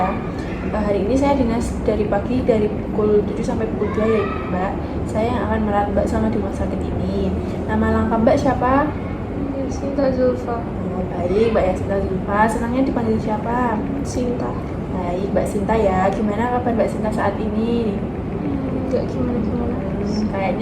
Hari ini saya dinas dari pagi dari pukul 7 sampai pukul 2 ya Mbak. Saya yang akan merawat Mbak selama di rumah sakit ini. Nama lengkap Mbak siapa? Sinta Zulfa. Oh, baik, Mbak Yasinta Zulfa. Senangnya dipanggil siapa? Sinta. Baik, Mbak Sinta ya. Gimana kabar Mbak Sinta saat ini? Nggak gimana-gimana.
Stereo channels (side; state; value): both; identical; correlation 1.00